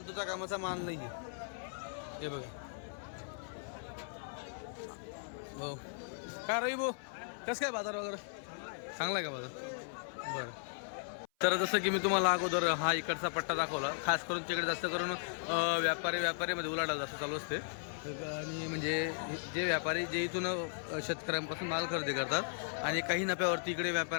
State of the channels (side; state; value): right; silent; 53 dB below the other